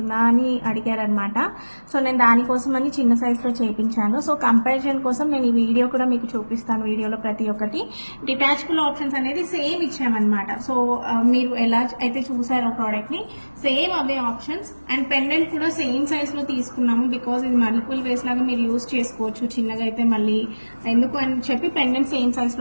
అని అడిగారనమాట. సో నేను దానికోసం అని చిన్న సైజులో చేయించాను. సో కంపారిజన్ కోసం నేను ఈ వీడియో కూడా మీకు చూపిస్తాను. వీడియోలో ప్రతి ఒక్కటి డిటాచబుల్ ఆప్షన్స్ అనేది సేమ్ ఇచ్చామన్నమాట. సో మీరు ఎలా అయితే చూసారో ప్రోడక్ట్ని same away options. And pendant కూడా సేమ్ సైజ్లో తీసుకున్నాము. బికాజ్ ఇది మల్టిపుల్ వేస్ లాగా మీరు యూజ్ చేసుకోవచ్చు. చిన్నగా అయితే మళ్ళీ ఎందుకు అని చెప్పి పెండెంట్ సేమ్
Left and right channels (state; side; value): inverted; both; correlation -1.00